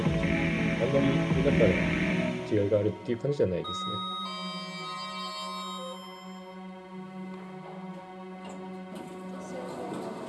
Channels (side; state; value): both; identical; correlation 1.00